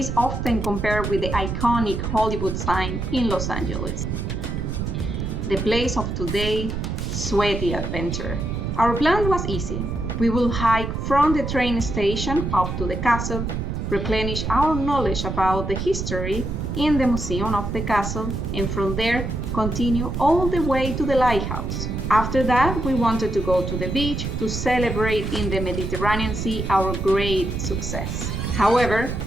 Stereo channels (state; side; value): noise; right; rumble, 3 dB below the sound